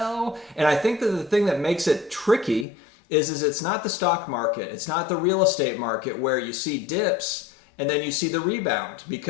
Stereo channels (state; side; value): drops out; right; at 2.7 s